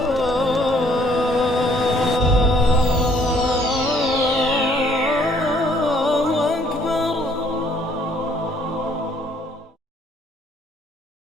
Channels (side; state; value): both; normal; correlation 0.63